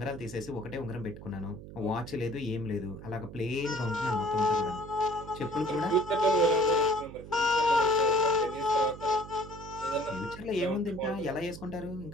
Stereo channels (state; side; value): noise; right; hum, 14 dB below the sound